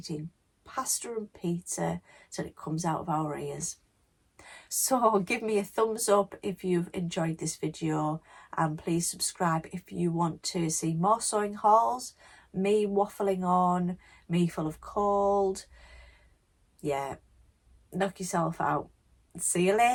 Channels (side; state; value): both; identical; correlation 1.00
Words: pasta and pizza till it comes out of our ears. So give me a thumbs up if you've enjoyed this video, and please subscribe if you want to see more sewing hauls, me waffling on, me full of cold. Yeah, knock yourself out. See you